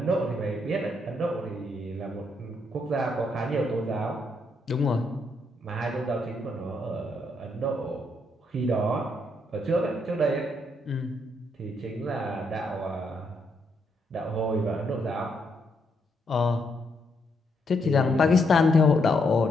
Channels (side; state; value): both; normal; correlation 0.76